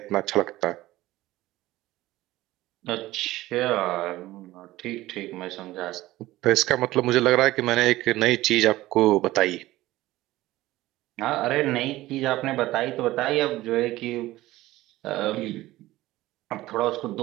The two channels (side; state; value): left; quieter; 17.0 dB